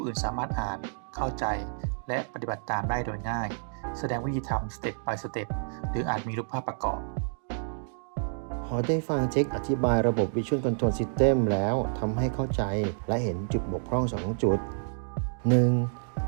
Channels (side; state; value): left; silent; digital silence